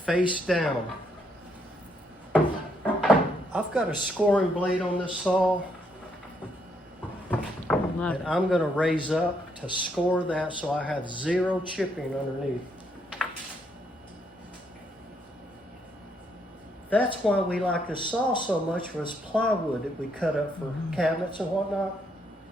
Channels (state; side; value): normal; both; correlation 0.74